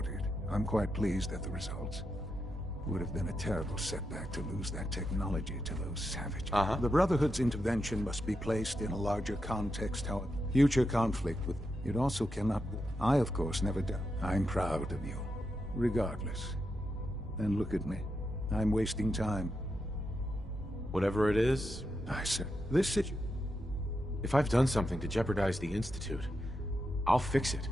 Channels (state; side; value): normal; both; correlation 0.85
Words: I'm quite pleased at the results. It would have been a terrible setback to lose that technology to those savages. The Brotherhood's intervention must be placed in a larger context, however. Future conflict with... It also cannot... I, of course, never doubt. I'm proud of you. Regardless. And look at me. I'm wasting time. Whatever it is, I said, this situation... if I've done something to jeopardize the Institute, I'll fix it.